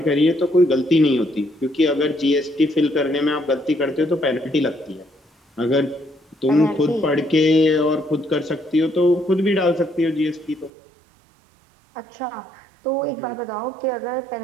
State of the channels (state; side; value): drops out; left; at 10.7 s